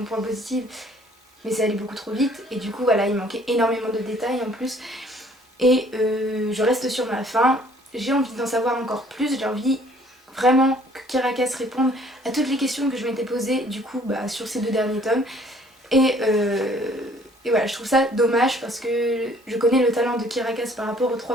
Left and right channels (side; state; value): both; normal; correlation 0.58